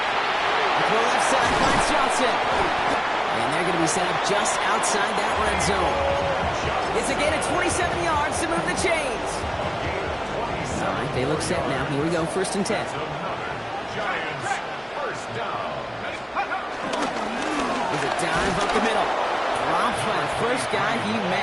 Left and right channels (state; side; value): identical; both; correlation 1.00